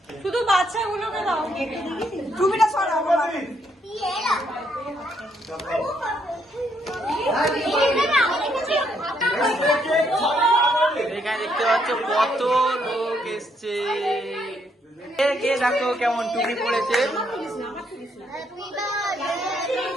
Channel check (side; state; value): both; normal; correlation 0.73